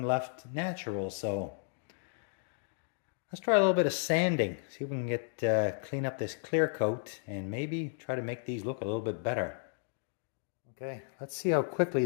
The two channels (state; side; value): silent; right; digital silence